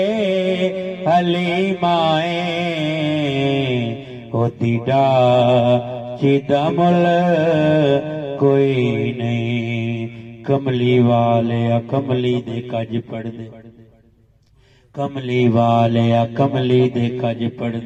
حلیمائیں ہوتی ڈاچی دا مل کوئی نہیں کملی والے کملی دے کج پڑھ دے کملی والے کملی دے کج پڑھ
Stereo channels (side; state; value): both; identical; correlation 1.00